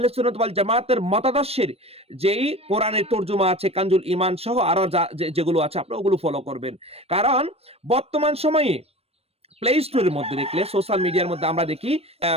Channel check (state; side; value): late; left; 0.29 ms